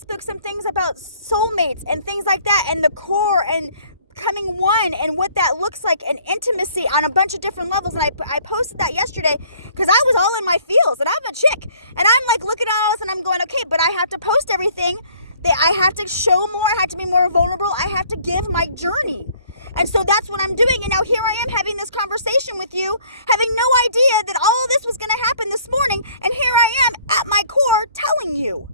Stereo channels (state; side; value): inverted; both; correlation -0.58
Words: some things about soulmates and things like that, and the core and becoming one and what that looks like, and intimacy on a bunch of different levels. And I posted that yesterday because I was all in my feels, and I'm a chick, and I'm like looking at all this and I'm going, okay, but I have to post everything. I have to show more. I have to be more vulnerable. I have to give my journey. And so that's what I'm doing. And now here I am having this conversation with you, having no idea that all this was going to happen this morning. And here I am at my core telling you